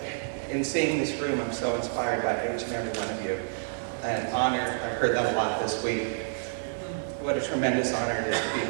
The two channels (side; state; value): left; silent; digital silence